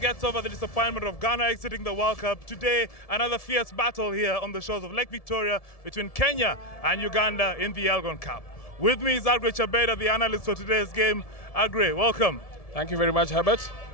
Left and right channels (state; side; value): late; right; 1.7 ms